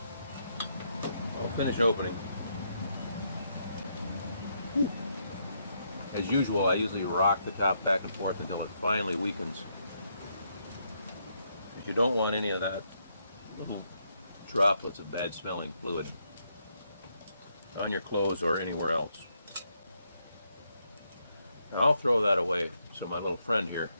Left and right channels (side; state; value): both; inverted; correlation -0.77